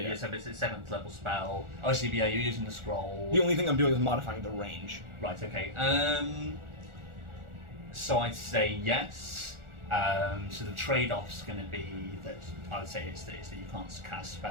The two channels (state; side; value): late; left; 1.4 ms